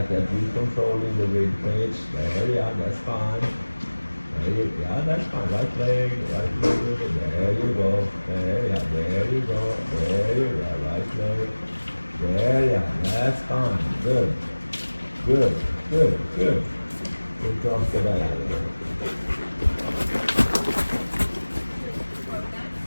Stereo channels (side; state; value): both; inverted; correlation -1.00